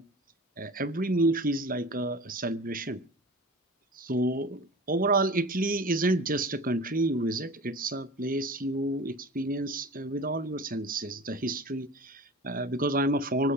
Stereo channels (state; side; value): normal; both; correlation 0.37